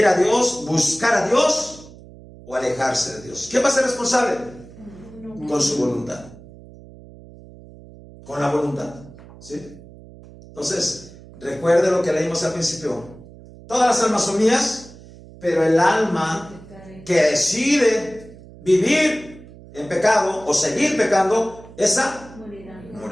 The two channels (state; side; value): noise; right; hum, 20 dB below the sound